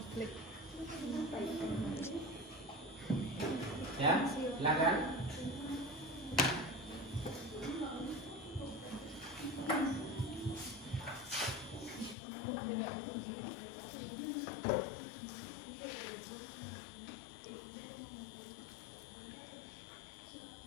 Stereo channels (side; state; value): right; drops out; at 12.2 s